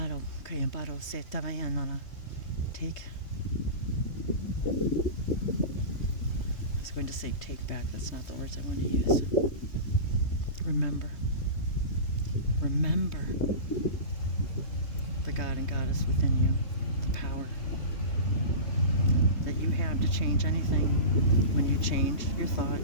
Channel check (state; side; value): late; right; 3.2 ms